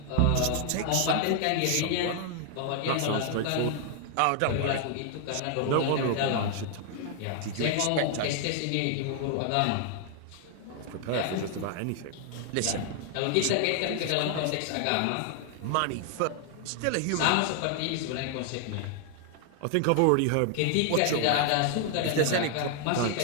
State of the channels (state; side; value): different; both; correlation 0.00